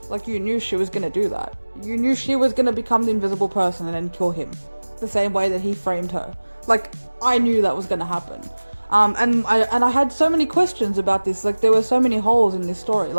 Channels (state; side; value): inverted; both; correlation -1.00